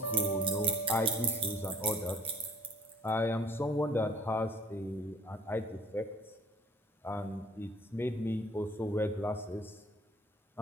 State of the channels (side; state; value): both; normal; correlation 0.53